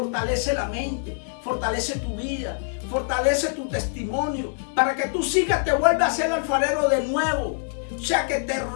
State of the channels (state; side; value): silent; right; digital silence